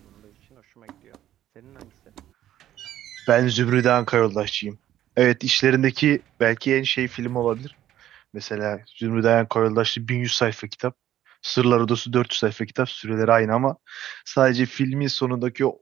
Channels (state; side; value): quieter; left; 12.4 dB